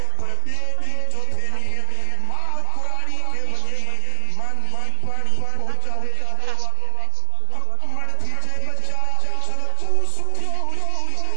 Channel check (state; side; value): different; both; correlation 0.00